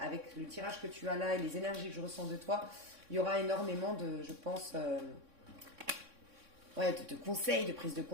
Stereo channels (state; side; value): late; left; 3.6 ms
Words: le tirage que tu as là et les énergies que je ressens de toi, il y aura énormément de, je pense, de conseils, de prise de